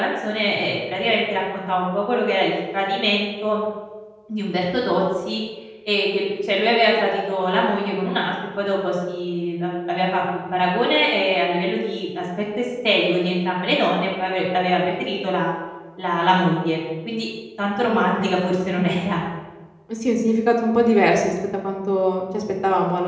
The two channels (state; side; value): identical; both; correlation 1.00